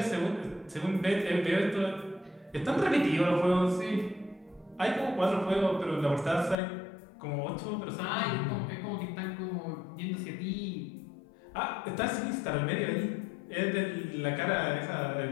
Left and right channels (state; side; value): drops out; right; at 6.6 s